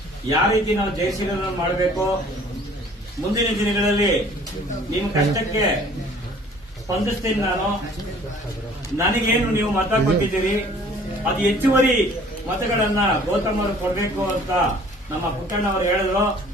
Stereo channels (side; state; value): both; normal; correlation 0.53